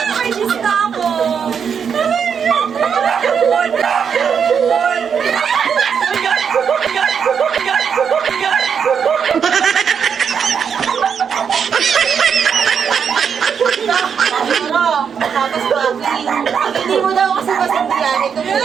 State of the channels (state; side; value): quieter; left; 7.0 dB